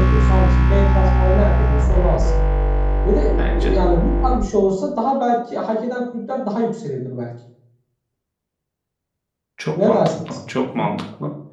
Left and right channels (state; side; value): identical; both; correlation 1.00